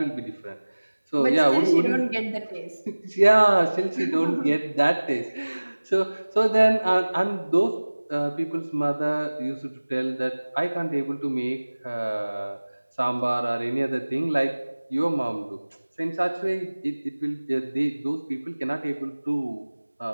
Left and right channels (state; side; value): inverted; both; correlation -1.00